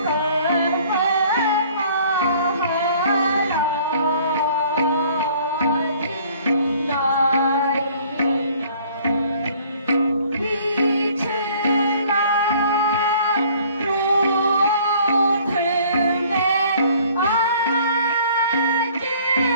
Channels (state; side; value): inverted; both; correlation -0.55